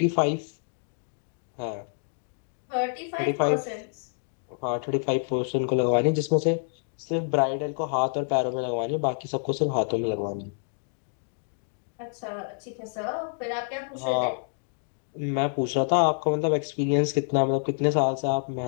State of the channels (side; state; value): right; silent; digital silence